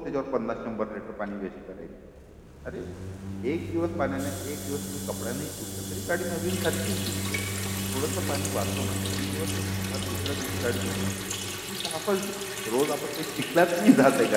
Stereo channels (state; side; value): identical; both; correlation 1.00